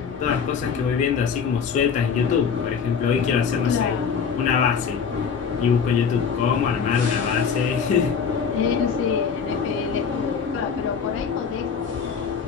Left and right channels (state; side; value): quieter; right; 6.4 dB